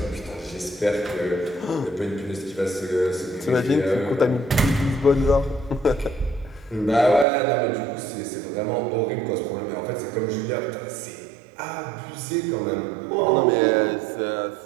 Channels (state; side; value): drops out; left; at 7.2 s